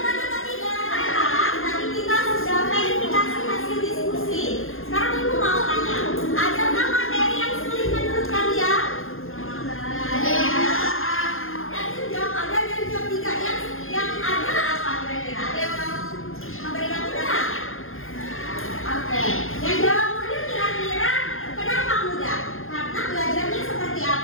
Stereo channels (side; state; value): right; late; 0.60 ms